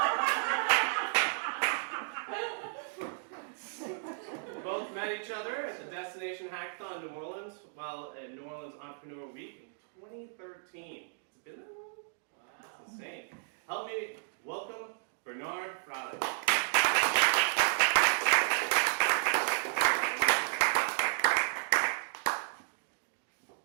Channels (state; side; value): silent; left; digital silence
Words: both met each other at the Destination Hackathon in New Orleans while at New Orleans Entrepreneur Week in 2013. It's been that long? Wow. That's insane. Help me welcome Bernhard Fraling.